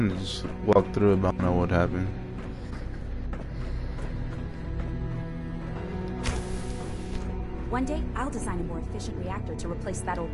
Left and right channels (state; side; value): identical; both; correlation 1.00